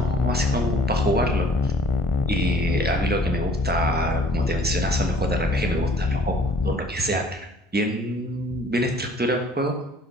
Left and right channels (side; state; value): both; normal; correlation 0.54